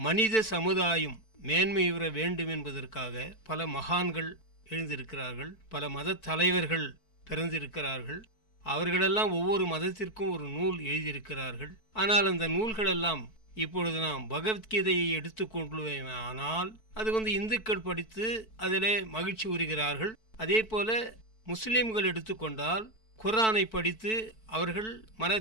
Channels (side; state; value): right; late; 4.5 ms